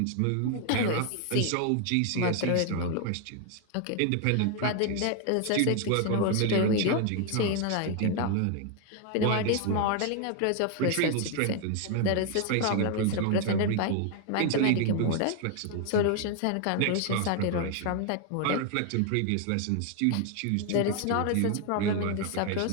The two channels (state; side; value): different; both; correlation 0.01